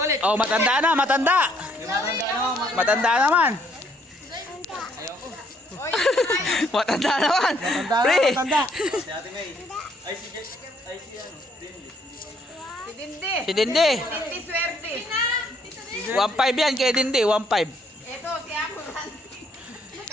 Oh, matanda na, matanda. Matanda naman. Matanda naman. Pre. Matanda. Si Ate May. Ay, si Jack. Ay, si ano. Dindi. Si Dindi. Hindi swerte. 1.5 yan kay Dindi, 1.5. Ito, si ako.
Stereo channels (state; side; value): normal; both; correlation 0.67